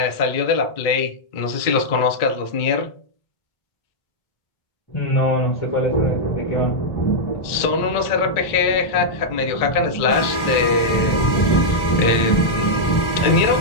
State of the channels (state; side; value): late; right; 2.2 ms